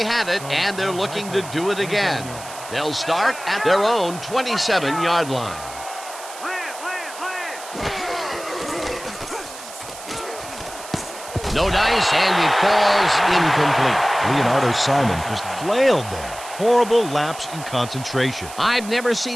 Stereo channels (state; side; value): noise; right; hiss, 14 dB below the sound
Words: had it, and they're looking to do it again. They'll start at their own 27-yard line. No dice, and it falls incomplete. Leonardo Simon just flailed there. Horrible lapse in concentration. I've never